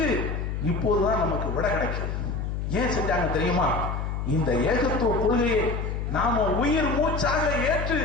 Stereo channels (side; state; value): left; noise; hum, 3 dB below the sound